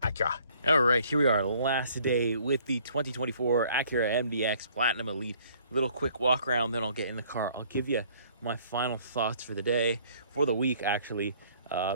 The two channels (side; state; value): both; inverted; correlation -0.59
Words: Acura. All right, here we are, last day with the 2024 Acura MDX Platinum Elite. Little quick walk around, then I'll get in the car. I'll give you my final thoughts for the day, for the week, actually.